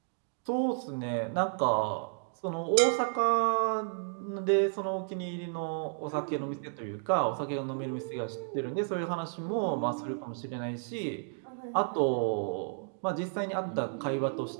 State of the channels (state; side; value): silent; left; digital silence